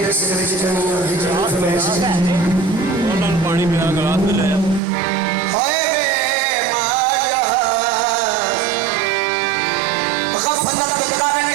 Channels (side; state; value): left; drops out; at 4.8 s